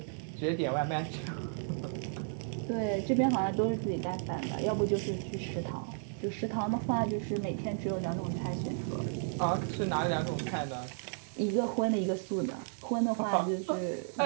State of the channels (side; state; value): left; silent; digital silence